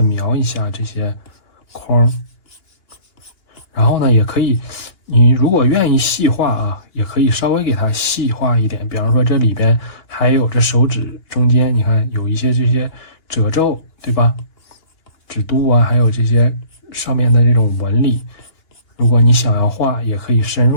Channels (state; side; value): late; right; 2.9 ms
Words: 描一下这些框，然后呢也可以，你如果愿意细化啊，也可以稍微给它细化一点。比方说这里边还有这手指中间，你看有一些这些褶皱，对吧？指肚啊，还有这些上面的这种纹理，如果你想要画，也可以深